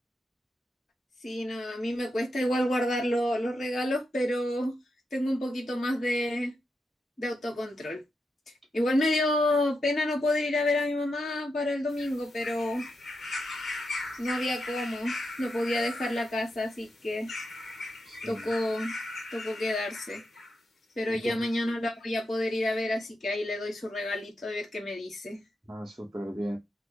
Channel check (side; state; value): both; normal; correlation 0.86